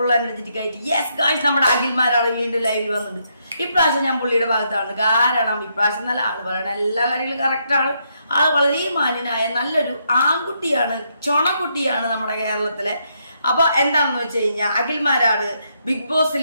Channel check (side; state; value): both; inverted; correlation -0.77